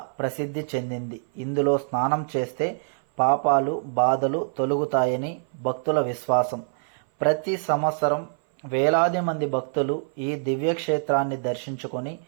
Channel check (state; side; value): silent; left; 58 dB below the other